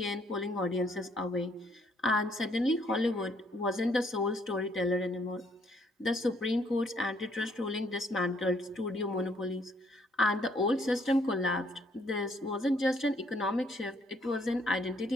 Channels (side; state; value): both; normal; correlation 0.67